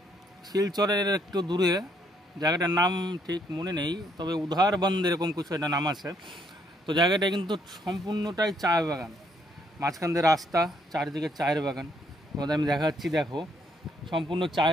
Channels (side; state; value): both; normal; correlation 0.70